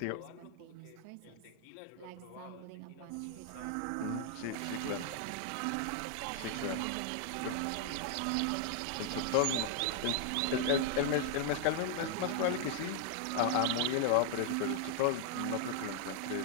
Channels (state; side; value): different; both; correlation 0.00